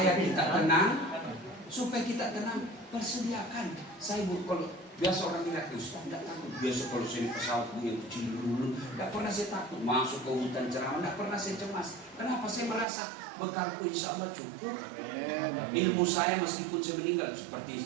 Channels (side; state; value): left; drops out; at 12.9 s